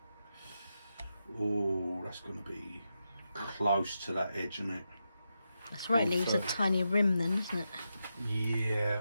Oh, that's going to be close to that edge, isn't it? That's right, it leaves a 130. tiny rim then, isn't it? Yeah.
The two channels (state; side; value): inverted; both; correlation -0.87